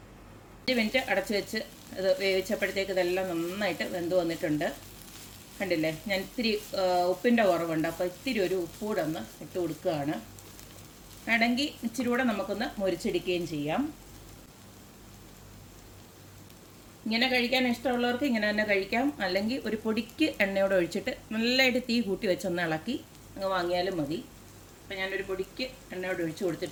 മിനിറ്റ് അടച്ചു വെച്ച് ഇത് വേവിച്ചപ്പോഴത്തേക്ക് ഇതെല്ലാം നന്നായിട്ട് വെന്ത് വന്നിട്ടുണ്ട്. കണ്ടില്ലേ, ഞാൻ ഇത്തിരി ഉപ്പിൻ്റെ കുറവുണ്ട്, അപ്പോൾ ഇത്തിരി ഒരു ഉപ്പ് കൂടെ ഒന്ന് ഇട്ട് കൊടുക്കുകയാണ്. വേണമെങ്കിൽ ഇച്ചിരി കൂടെ നമുക്കൊന്ന് മുരിച്ചെടുക്കുകയും ചെയ്യാം. ഇങ്ങനെ കഴിക്കാൻ ഇഷ്ടമുള്ളവർക്ക് ഇങ്ങനെ തന്നെ കഴിക്കാം. അല്ലെങ്കിൽ ഒരു പൊടിക്ക് എണ്ണയോടെ ഒഴിച്ചിട്ട് നല്ലതായിട്ട് തീ കൂട്ടി വെച്ചൊന്ന് ഇളക്കി അങ്ങ് വാങ്ങിയാലും മതി. അപ്പം ഞാനൊരു പൊടിക്ക് എണ്ണയോടെ ഒഴിച്ച്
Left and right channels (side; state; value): both; identical; correlation 1.00